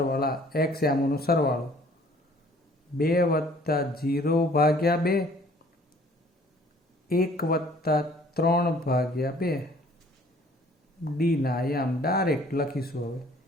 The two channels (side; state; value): both; normal; correlation 0.56